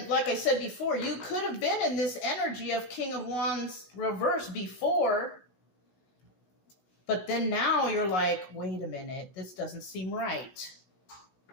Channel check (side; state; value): right; late; 16 ms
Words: like I said before, you could have been in this energy of King of Wands reverse before, but then now you're like, wait a minute, this doesn't seem right.